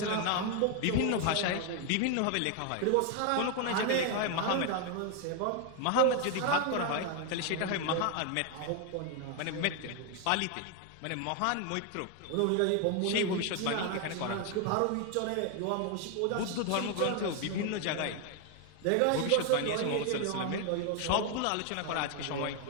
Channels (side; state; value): both; different; correlation 0.01